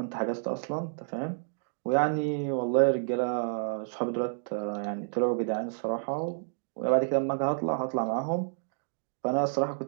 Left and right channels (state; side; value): silent; left; digital silence